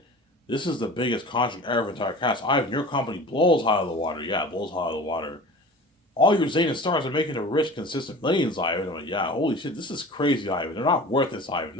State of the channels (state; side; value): normal; both; correlation 0.39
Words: this is the biggest contract ever for entire cast. Ivan, your company blows high out of the water. Yeah, it blows high out of the water. All your Zayn stars are making a rich, consistent millions, Ivan. I'm like, yeah, holy shit, this is crazy, Ivan. They're not worth this, Ivan.